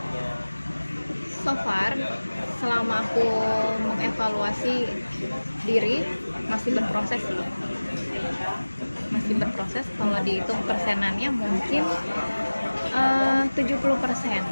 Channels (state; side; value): inverted; both; correlation -1.00